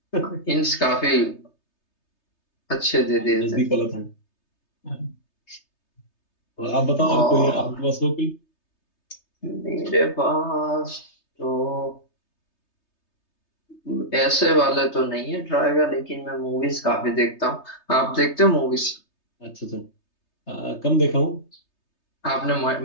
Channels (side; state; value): right; late; 3.3 ms